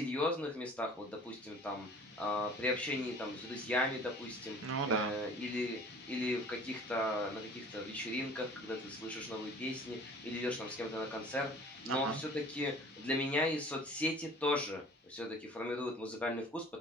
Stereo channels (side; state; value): both; normal; correlation 0.47